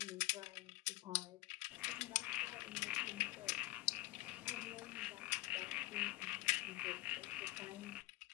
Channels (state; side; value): quieter; right; 20.0 dB